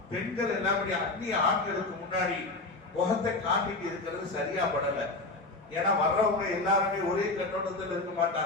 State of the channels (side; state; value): right; quieter; 3.1 dB